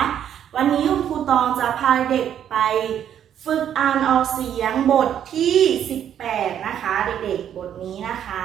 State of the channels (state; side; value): quieter; left; 9.7 dB